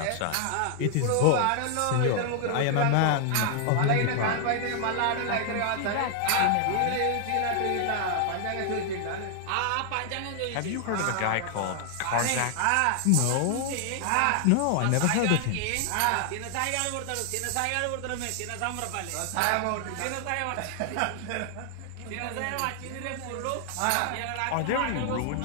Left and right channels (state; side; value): different; both; correlation 0.00